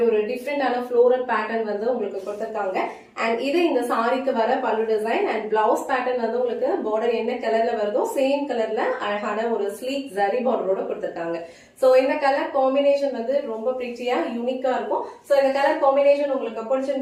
ஒரு டிஃப்ரெண்டான ஃப்ளோரல் பேட்டர்ன் வந்து உங்களுக்கு கொடுத்திருக்காங்க. அண்ட் இது இந்த சாரிக்கு வர பல்லு டிசைன் அண்ட் பிளவுஸ் பேட்டர்ன் வந்து உங்களுக்கு பார்டர் என்ன கலர்ல வருதோ சேம் கலர்ல அழகான ஒரு ஸ்லீக் ஜரி பார்டரோட கொடுத்திருக்காங்க. சோ இந்த கலர் காம்பினேஷன் வந்து ரொம்ப பிரிட்டியா யூனிக்கா இருக்கும். சோ இந்த கலர் காம்பினேஷன் உங்களுக்கு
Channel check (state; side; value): identical; both; correlation 1.00